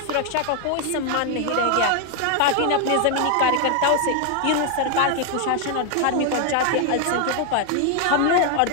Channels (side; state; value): both; different; correlation 0.00